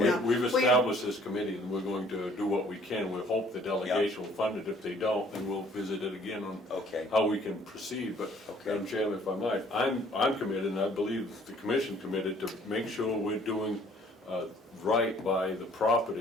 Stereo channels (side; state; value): both; normal; correlation 0.58